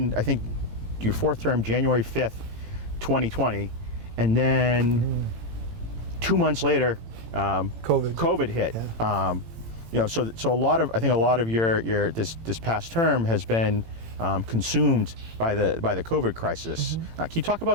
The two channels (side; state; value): left; late; 18 ms